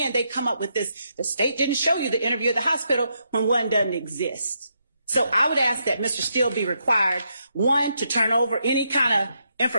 end they come up with this. The state didn't show you the interview at the hospital when one doesn't exist. So I would ask that Mr. Steele be required, one, to turn over any kind of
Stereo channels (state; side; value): inverted; both; correlation -0.80